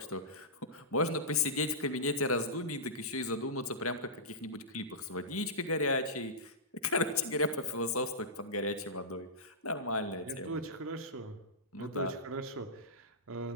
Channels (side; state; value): both; normal; correlation -0.16